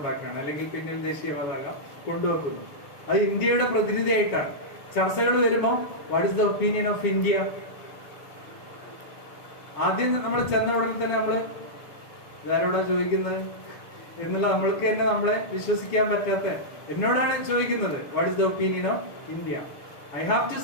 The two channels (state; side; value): late; right; 7.2 ms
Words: അല്ലെങ്കിൽ പിന്നിൽ ദേശീയ പതാക കൊണ്ടുവെക്കുന്നു. അത് ഇന്ത്യയുടെ പ്രതിനിധിയായിട്ടാണ്. ചർച്ചകൾ വരുമ്പോൾ what is the opinion of India? ആദ്യം നമ്മൾ ചെന്ന ഉടനെ തന്നെ നമ്മള് ഇതാരോടാ ചോദിക്കുന്നത് എന്നുള്ള നമ്മൾക്ക് തന്നെ നമ്മളെ വിശ്വസിക്കാൻ പറ്റാത്ത എന്നോടാണ് ചോദിക്കുന്നത് what is the opinion of India. I